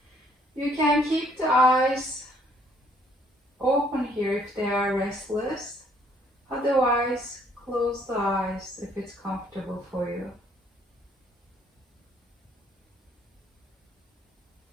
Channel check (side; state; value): both; normal; correlation 0.64